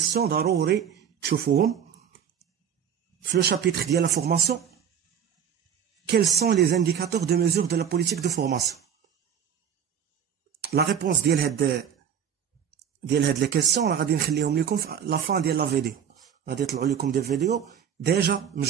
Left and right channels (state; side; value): quieter; left; 8.3 dB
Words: ضروري تشوفوهم في le chapitre ديال la formation. Quels sont les indicateurs de mesure de la politique de formation? La réponse ديال هاد les questions راه غادي نخليهم لكم في la fin ديال la vidéo. غادي يطلعوا لكم des vidéos déjà